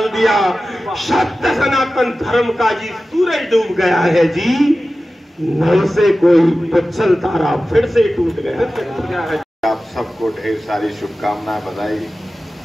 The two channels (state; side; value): normal; both; correlation 0.95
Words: दिया। सत्य सनातन धर्म का जी सूरज डूब गया है जी, नव से कोई पुच्छल तारा फिर से टूट गया है। आप सबको ढेर सारी शुभकामनाएं, बधाई।